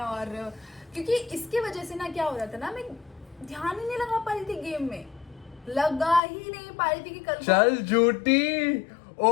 और क्योंकि इसके वजह से ना क्या हो रहा था ना, मैं ध्यान ही नहीं लगा पा रही थी गेम में, लगा ही नहीं पा रही थी कि कल चल झूठी,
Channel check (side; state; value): right; drops out; at 6.2 s